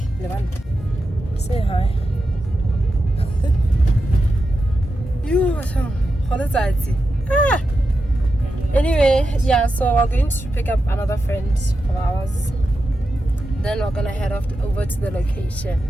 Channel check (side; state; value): both; normal; correlation 0.89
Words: say hi. Anyway, yeah, so we're going to pick up another friend of ours. Then we're gonna head off over to the location.